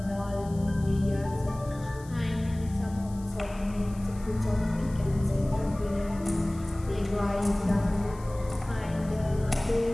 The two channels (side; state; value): left; noise; hiss, 23 dB below the sound